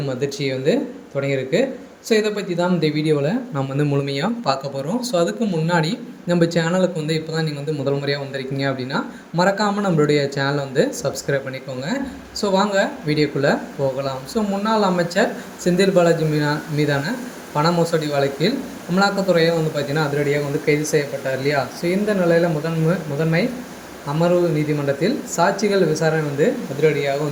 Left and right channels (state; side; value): identical; both; correlation 1.00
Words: அதிர்ச்சியை தொடங்கியிருக்கு. ஸோ இதை பற்றி தான் இந்த வீடியோவில் நாம் முழுமையாக பார்க்க போகிறோம். ஸோ அதுக்கு முன்னாடி நம்ம சேனலுக்கு இப்போ தான் நீங்கள் முதல் முறையாக வந்திருக்கீங்க அப்படின்னா மறக்காமல் நம்மளுடைய சேனலை சப்ஸ்கிரைப் பண்ணிக்கோங்க. ஸோ வாங்க வீடியோக்குள்ளே போகலாம். ஸோ முன்னாள் அமைச்சர் செந்தில் பாலாஜி மீதான பண மோசடி வழக்கில் அமலாக்கத்துறையை பார்த்திங்கன்னா அதிரடியாக கைது செய்யப்பட்டார் இல்லையா. ஸோ இந்த நிலையில் முதன்மை அமர்வு நீதிமன்றத்தில் சாட்சிகள் விசாரணை அதிரடியாக